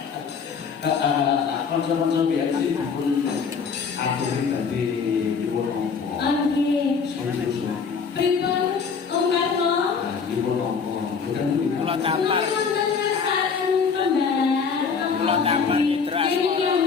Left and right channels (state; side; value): quieter; right; 5.8 dB